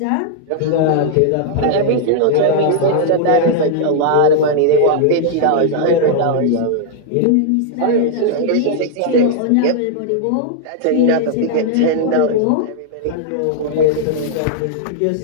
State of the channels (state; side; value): different; both; correlation -0.01